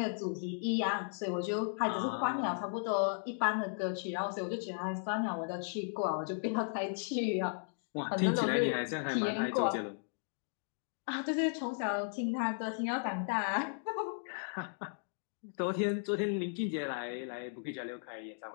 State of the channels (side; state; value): right; silent; digital silence